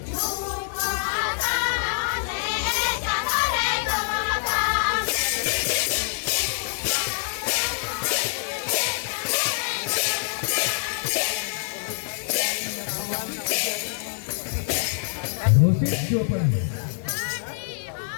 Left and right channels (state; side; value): silent; right; digital silence